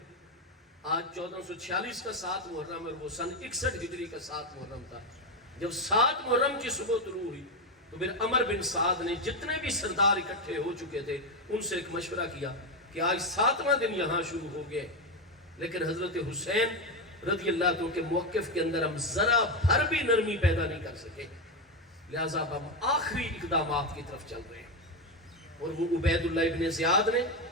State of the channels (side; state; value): both; normal; correlation 0.10